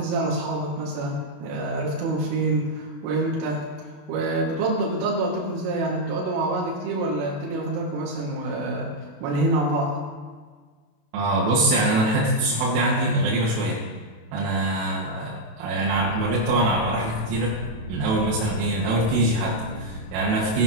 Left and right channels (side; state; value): left; late; 27 ms